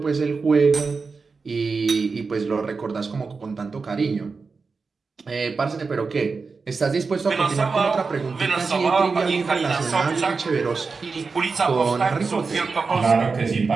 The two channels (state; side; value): quieter; left; 4.6 dB